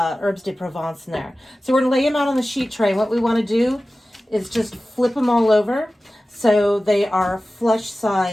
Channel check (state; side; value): normal; both; correlation 0.96